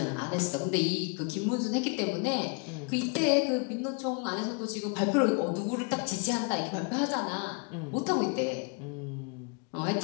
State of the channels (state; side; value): quieter; right; 35.3 dB